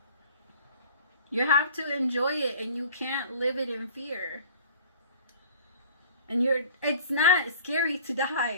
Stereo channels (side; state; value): both; inverted; correlation -0.47